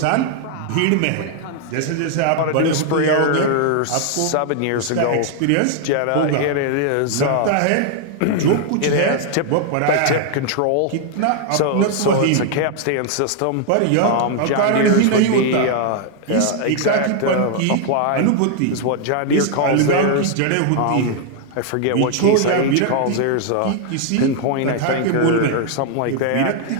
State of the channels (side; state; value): both; different; correlation 0.00